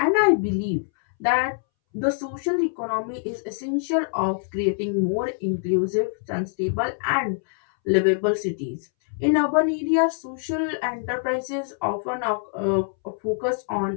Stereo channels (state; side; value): silent; right; 62 dB below the other